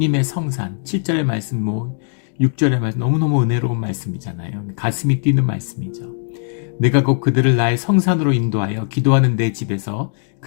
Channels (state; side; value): silent; right; digital silence